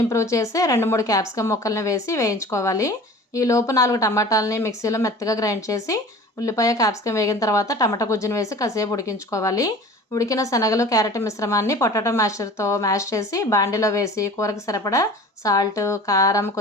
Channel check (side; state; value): both; normal; correlation 0.42